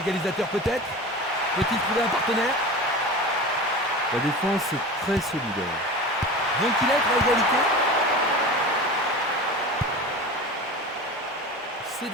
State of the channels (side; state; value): both; normal; correlation 0.32